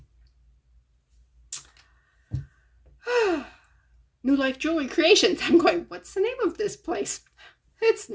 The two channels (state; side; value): identical; both; correlation 1.00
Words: New Life Jewelry Creations. I'm going, what's the name of this place? It's